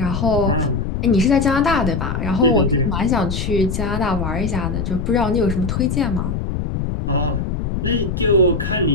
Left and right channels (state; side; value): noise; left; rumble, 3 dB below the sound